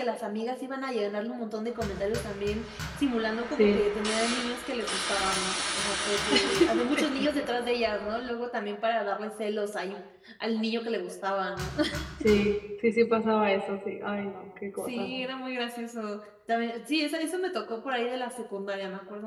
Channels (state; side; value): identical; both; correlation 1.00